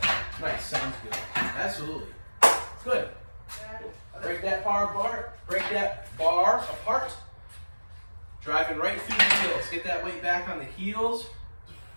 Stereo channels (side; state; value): both; inverted; correlation -1.00